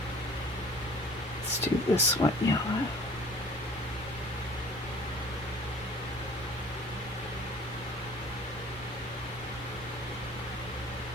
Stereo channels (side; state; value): both; normal; correlation 0.48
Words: this one yellow.